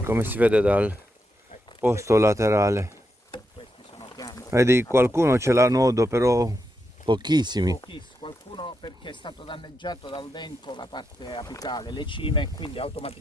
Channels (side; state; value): both; normal; correlation 0.84